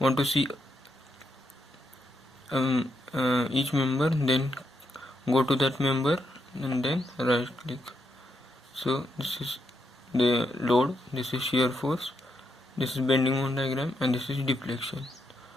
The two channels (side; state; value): both; normal; correlation 0.80